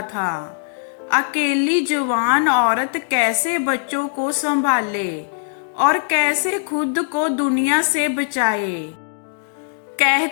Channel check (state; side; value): silent; right; digital silence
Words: था। अकेली जवान औरत कैसे बच्चों को संभाले और कैसे खुद को दुनिया से बचाए।